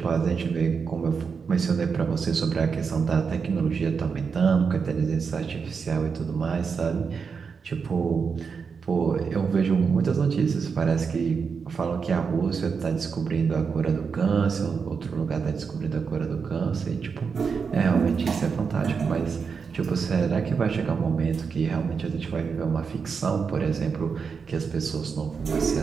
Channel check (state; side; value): quieter; left; 5.7 dB